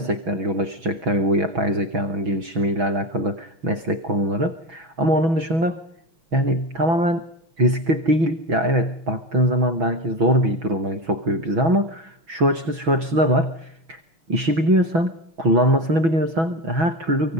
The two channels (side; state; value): left; late; 6.1 ms